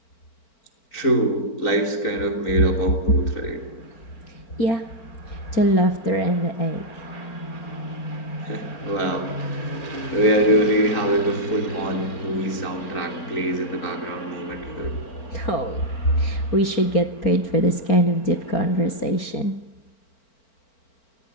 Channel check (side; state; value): right; late; 4.4 ms